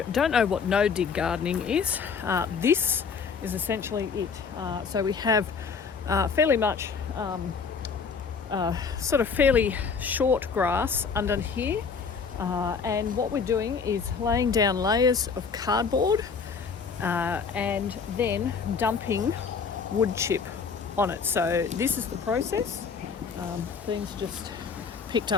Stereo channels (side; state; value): right; quieter; 5.6 dB